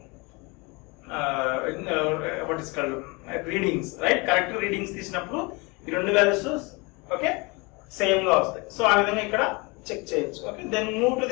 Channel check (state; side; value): quieter; right; 27.5 dB